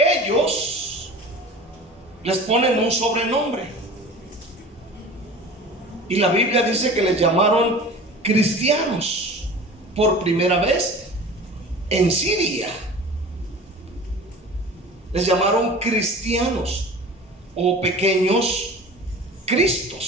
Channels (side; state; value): both; normal; correlation 0.39